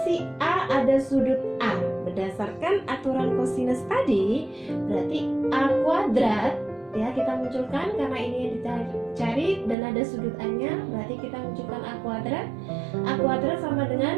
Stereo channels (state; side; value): drops out; left; at 9.8 s